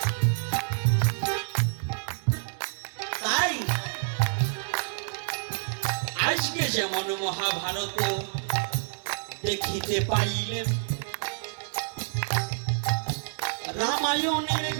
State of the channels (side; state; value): left; silent; digital silence